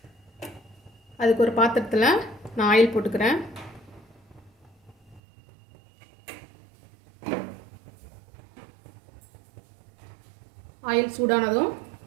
அதுக்கு ஒரு பாத்திரத்துல நான் ஆயில் போட்டுக்கிறேன். ஆயில் சூடானதும்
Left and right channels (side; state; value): left; drops out; at 5.2 s